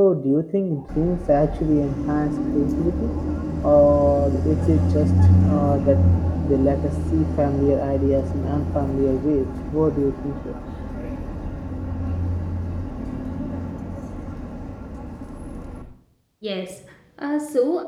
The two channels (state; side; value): identical; both; correlation 1.00